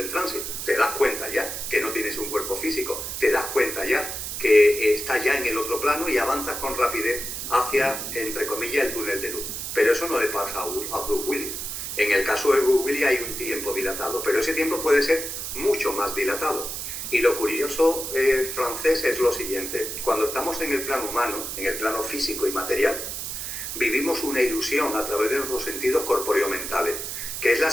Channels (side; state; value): right; noise; hiss, 5 dB below the sound